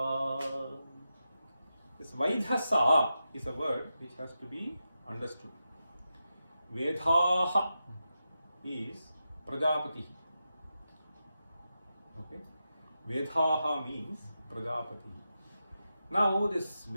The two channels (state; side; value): inverted; both; correlation -0.89